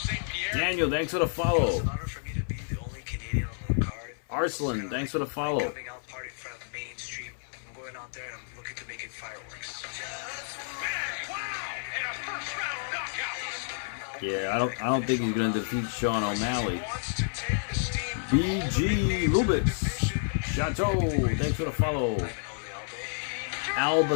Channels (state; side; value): silent; right; 58 dB below the other